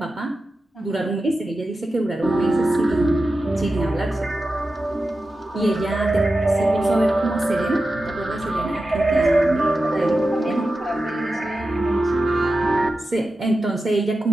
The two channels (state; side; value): normal; both; correlation 0.92